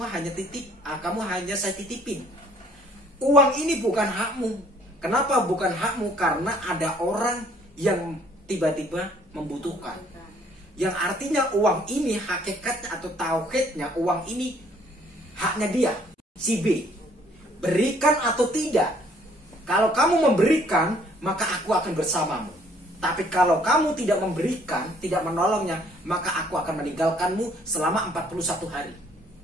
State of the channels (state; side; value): normal; both; correlation 0.61